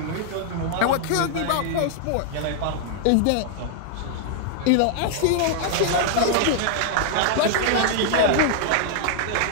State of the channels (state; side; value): different; both; correlation -0.01